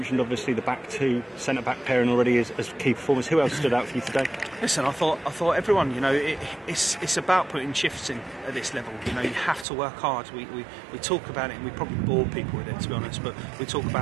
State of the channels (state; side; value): drops out; left; at 9.7 s